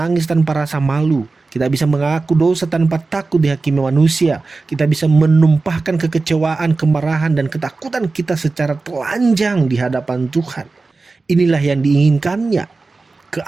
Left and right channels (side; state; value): left; quieter; 3.8 dB